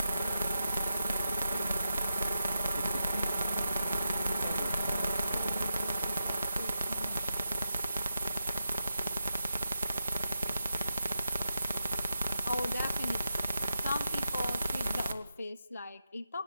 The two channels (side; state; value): both; inverted; correlation -0.88